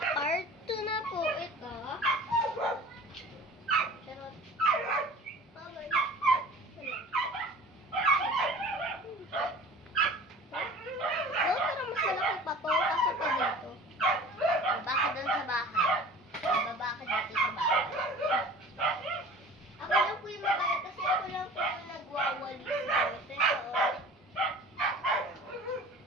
part 2 na po ito. Charot. Bye-bye. No, pero mas malaki pa to. Kaso pa dito. Baba ka doon sa bahay. Baba ka dito sa bahay. Ako lang po yung mabaya kasi ako lang po yung nagwawalis dito.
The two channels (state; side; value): normal; both; correlation 0.42